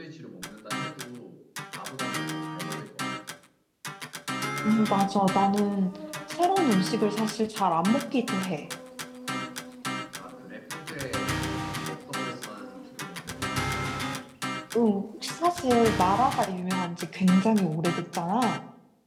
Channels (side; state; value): both; identical; correlation 1.00